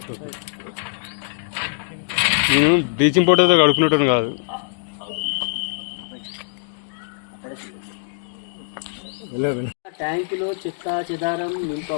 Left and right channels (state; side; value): silent; right; 64 dB below the other